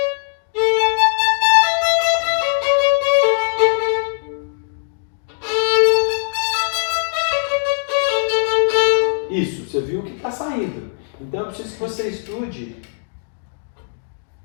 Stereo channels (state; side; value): silent; right; digital silence